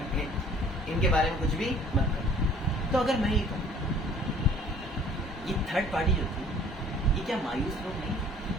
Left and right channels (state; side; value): normal; both; correlation 0.54